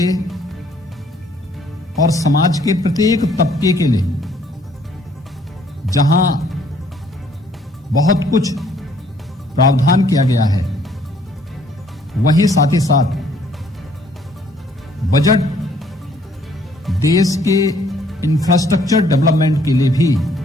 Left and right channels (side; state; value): both; normal; correlation 0.63